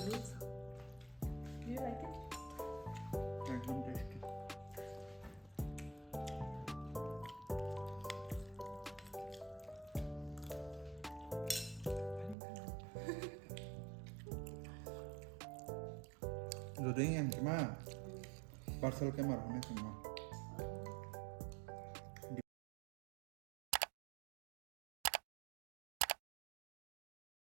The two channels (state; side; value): drops out; left; at 12.4 s